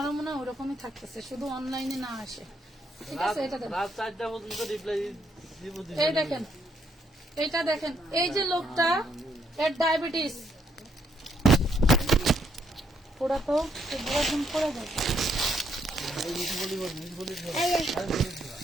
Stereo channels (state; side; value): normal; both; correlation 0.74